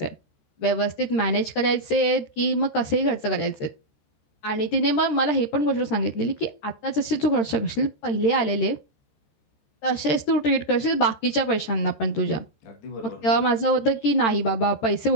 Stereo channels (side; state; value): right; late; 13 ms